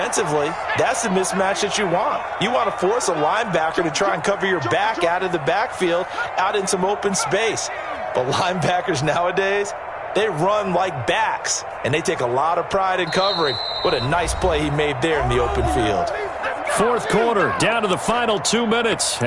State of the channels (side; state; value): both; identical; correlation 1.00